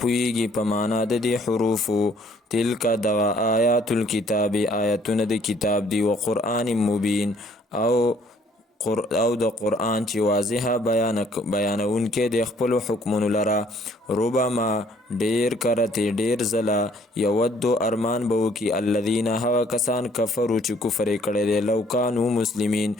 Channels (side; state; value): both; normal; correlation 0.61